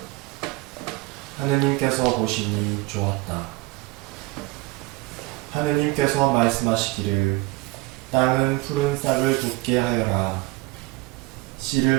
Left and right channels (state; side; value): quieter; left; 22.3 dB